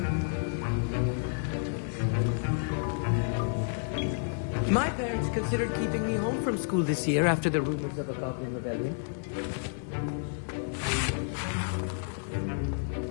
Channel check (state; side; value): silent; right; digital silence